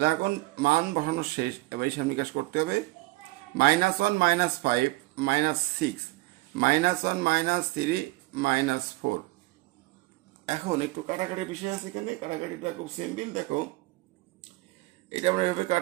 এখন মান বসানো শেষ, এবার হিসাব নিকাশ করতে হবে। -1 -5 -6, -1 -3 -4। এখন একটু কাটাকাটি বিষয় আছে এখানে, কাটাকাটিটা খুব সিম্পল। দেখো এটা আমরা এভাবে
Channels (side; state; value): left; quieter; 21.3 dB